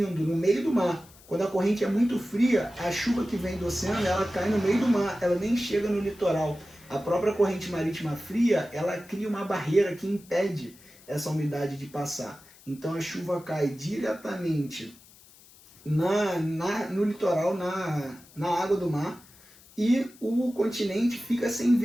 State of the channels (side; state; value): left; noise; hiss, 24 dB below the sound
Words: no meio do mar. Quando a corrente é muito fria, a chuva que vem do oceano, ela cai no meio do mar, ela nem chega no litoral. A própria corrente marítima fria, ela cria uma barreira que impede essa umidade de passar. Então a chuva cai diretamente no litoral, na água do mar, e o continente fica sem